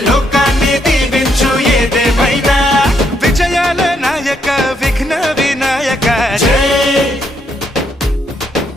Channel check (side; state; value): both; normal; correlation 0.74